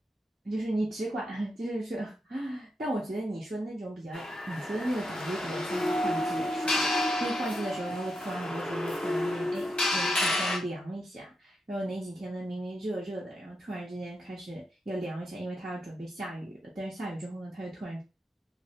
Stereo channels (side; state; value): both; normal; correlation 0.84